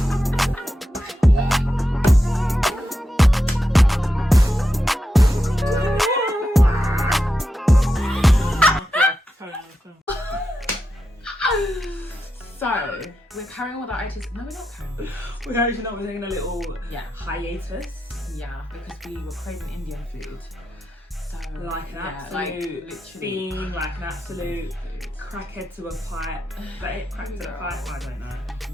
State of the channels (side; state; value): both; normal; correlation 0.87